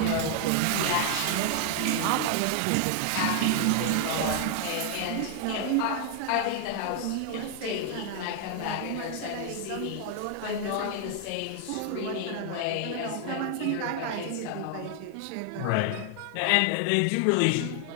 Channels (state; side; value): different; both; correlation 0.00